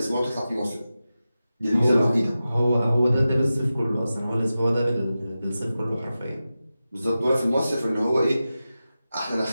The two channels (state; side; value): inverted; both; correlation -0.93